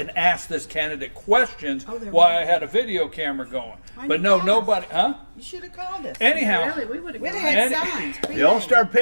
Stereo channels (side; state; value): both; inverted; correlation -1.00